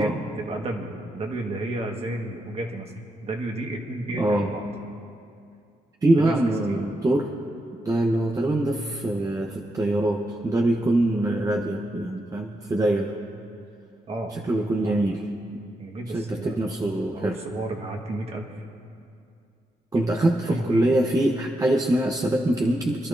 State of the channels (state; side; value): normal; both; correlation 0.84